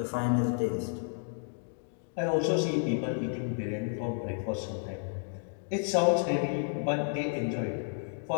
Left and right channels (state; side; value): silent; right; digital silence